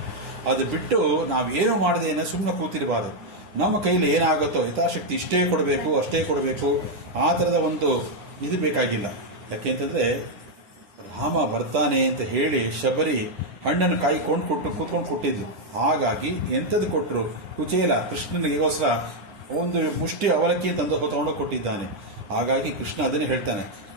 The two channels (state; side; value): late; left; 10 ms